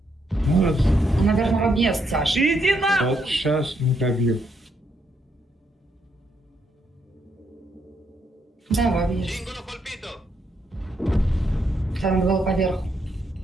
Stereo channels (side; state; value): both; normal; correlation 0.76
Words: Ну, Наверное, в объезд, Саша. Иди на! вот сейчас не пробил. Да, в объезд. Там был поверху.